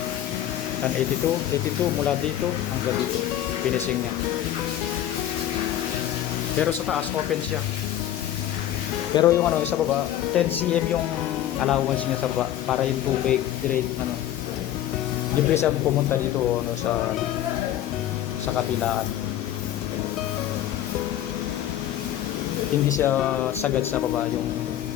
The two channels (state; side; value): quieter; right; 12.0 dB